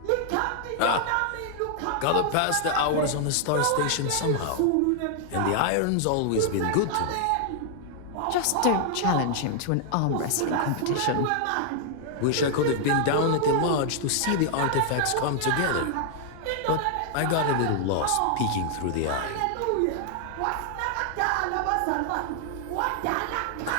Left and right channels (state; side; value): different; both; correlation 0.00